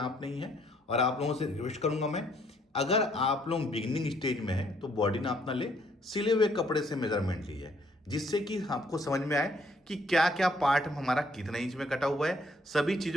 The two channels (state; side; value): normal; both; correlation 0.67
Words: नहीं है। और आप लोगों से रिक्वेस्ट करूंगा मैं, अगर आप लोग बिगिनिंग स्टेज में हैं तो बॉडी नाप ना ले, सिले हुए कपड़े से मेजरमेंट लीजिए, जिससे कि आपको समझ में आए कि क्या क्या पार्ट हमारा कितने इंच में कटा हुआ है। सभी